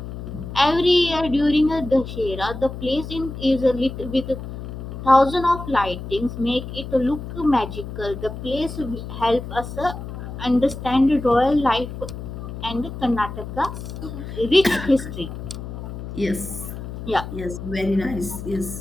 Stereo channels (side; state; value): left; noise; hum, 9 dB below the sound